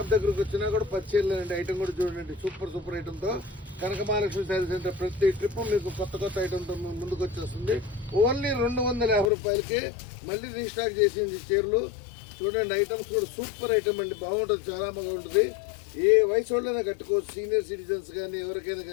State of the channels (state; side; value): drops out; right; at 9.3 s